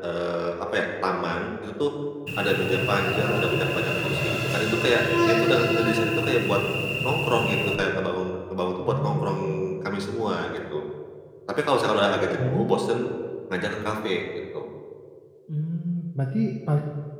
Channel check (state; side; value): identical; both; correlation 1.00